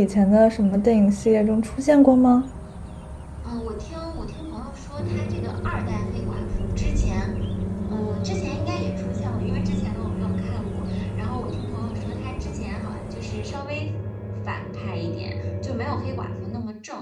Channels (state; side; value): identical; both; correlation 1.00